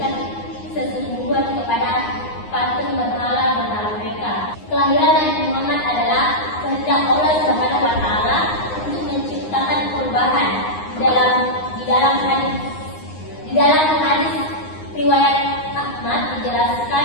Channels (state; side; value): late; right; 9.7 ms